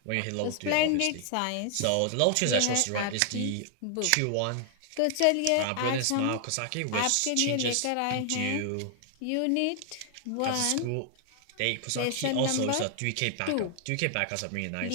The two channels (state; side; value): different; both; correlation 0.00